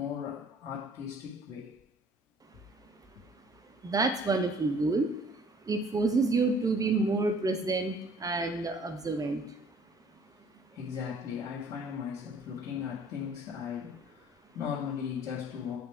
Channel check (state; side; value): normal; both; correlation 0.54